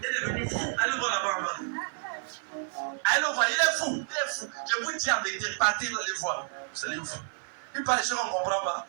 est devenu fou. Allez le voir là-bas en bas. Allez le voir, il est fou. Il est fou. Je vous dis en vérité, partez dans les voies. Vous allez fou. Il parle des choses qu'on ne comprend pas.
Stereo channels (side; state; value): left; silent; 58 dB below the other